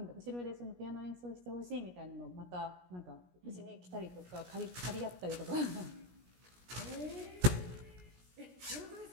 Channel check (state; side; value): late; left; 17 ms